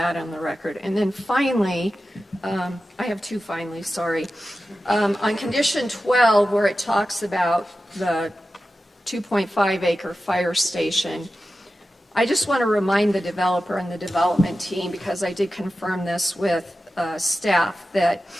on the record. And then finally, I have 2 finally, sorry. On condition 12, where it talks about the 2.5 acre fire station, I just want to remind the developer and the development team, because I did confirm this with staff, that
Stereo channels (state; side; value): normal; both; correlation 0.93